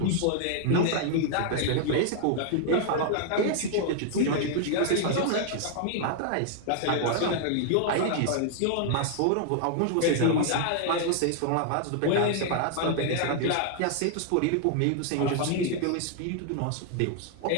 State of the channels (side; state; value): both; different; correlation 0.00